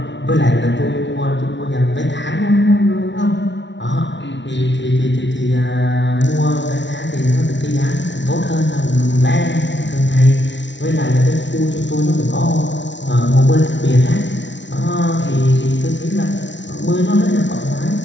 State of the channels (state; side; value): late; right; 0.52 ms